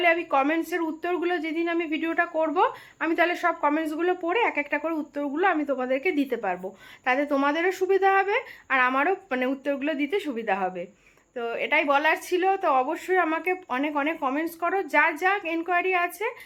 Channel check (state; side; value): identical; both; correlation 1.00